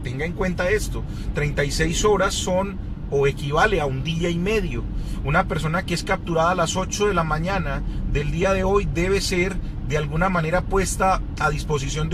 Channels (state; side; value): identical; both; correlation 1.00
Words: en cuenta esto, 36 horas son o equivale a un día y medio. Una persona que es capturada a las 8 de la mañana del día de hoy debe ser de alguna manera puesta a disposición